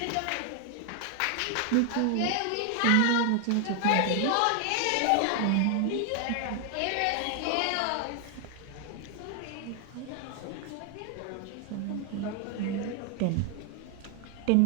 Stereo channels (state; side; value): different; both; correlation 0.00